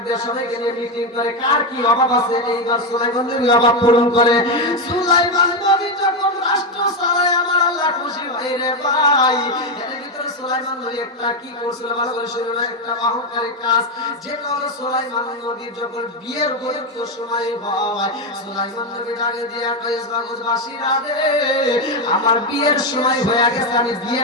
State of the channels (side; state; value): both; normal; correlation 0.09